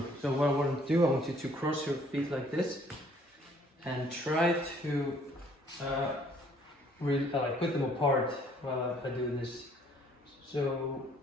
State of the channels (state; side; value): normal; both; correlation 0.61